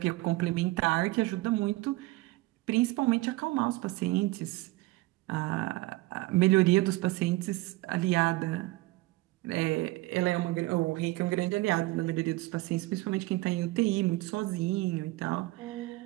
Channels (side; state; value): left; quieter; 19.7 dB